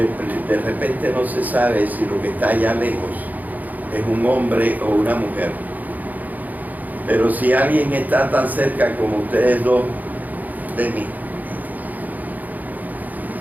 repente no se sabe si lo que está allá lejos es un hombre o una mujer. Pero si alguien está tan cerca como ustedes dos de mí,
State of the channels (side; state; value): left; late; 0.081 ms